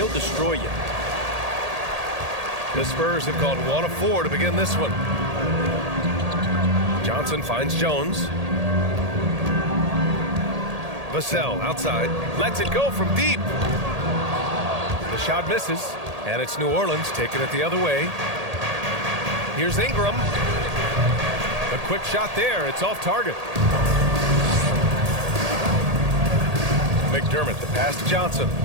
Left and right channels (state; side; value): late; left; 1.8 ms